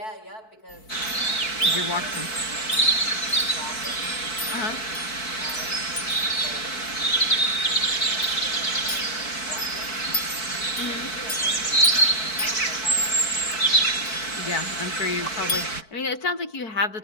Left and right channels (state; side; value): late; right; 4.6 ms